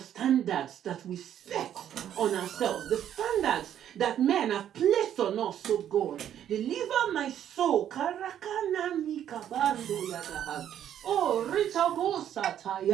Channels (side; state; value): left; quieter; 10.3 dB